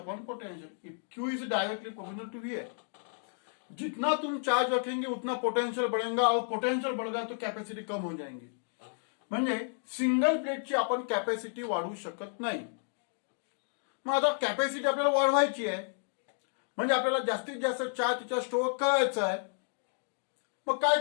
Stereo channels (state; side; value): silent; right; digital silence